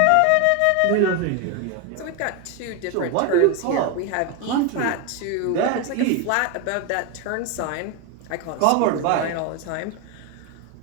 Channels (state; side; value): different; both; correlation 0.02